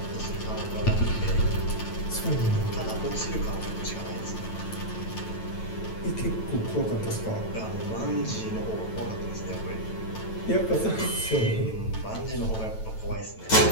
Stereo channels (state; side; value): late; right; 9.1 ms